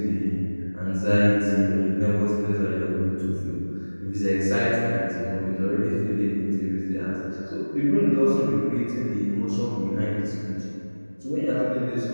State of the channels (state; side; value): inverted; both; correlation -1.00